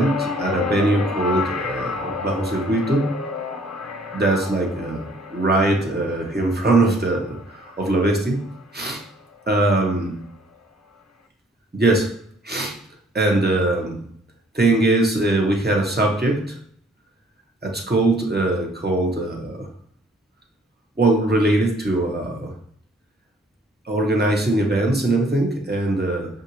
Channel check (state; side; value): normal; both; correlation 0.60